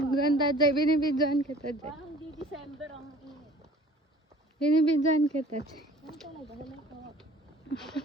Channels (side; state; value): both; normal; correlation 0.50